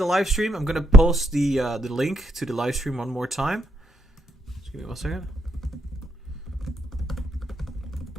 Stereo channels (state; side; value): normal; both; correlation 0.77